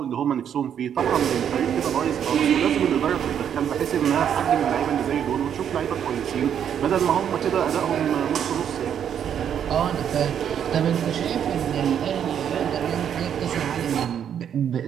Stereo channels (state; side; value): quieter; left; 8.9 dB